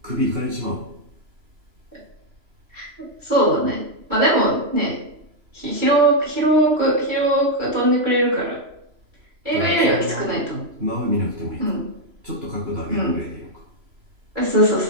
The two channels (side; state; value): left; late; 3.0 ms